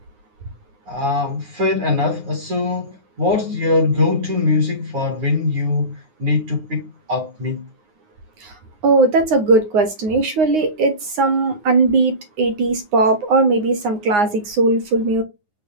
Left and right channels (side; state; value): left; late; 9.6 ms